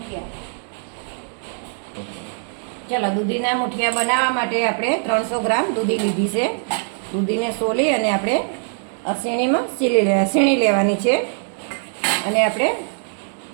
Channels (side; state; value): left; silent; 60 dB below the other